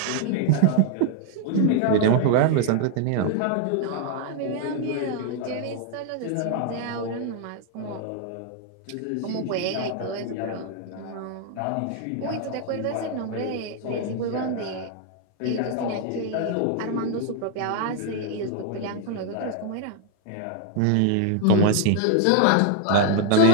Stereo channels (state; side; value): different; both; correlation 0.00